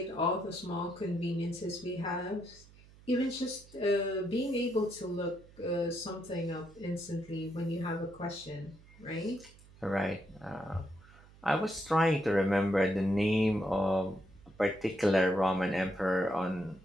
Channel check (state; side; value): noise; right; hum, 23 dB below the sound